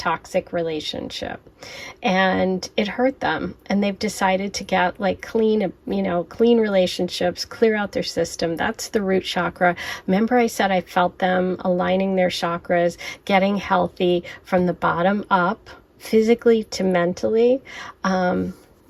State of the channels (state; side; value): identical; both; correlation 1.00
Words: relationship, and it hurt them, and they've decided to get like clean relationships, clear out their system. That's the root chakra. Remember I said I felt them aligning their chakras, getting healthy from the bottom up, physically to mentally.